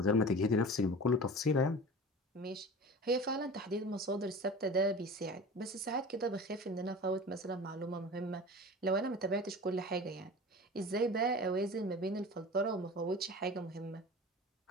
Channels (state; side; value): normal; both; correlation 0.36